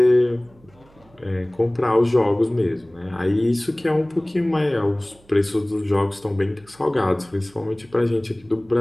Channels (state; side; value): noise; right; hum, 29 dB below the sound